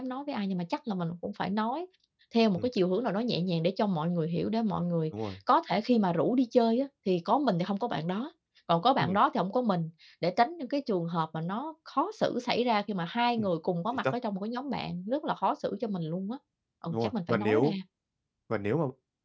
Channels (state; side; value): identical; both; correlation 1.00